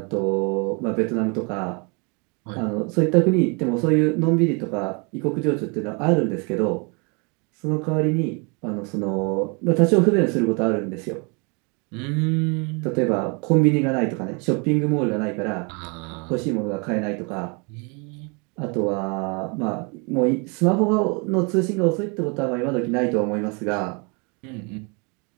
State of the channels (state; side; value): quieter; left; 32.7 dB